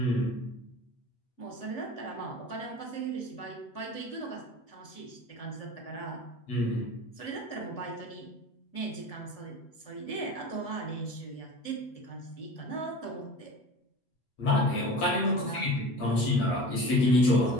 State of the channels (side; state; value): right; late; 8.1 ms